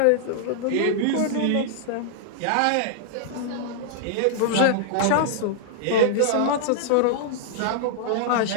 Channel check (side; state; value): both; different; correlation -0.01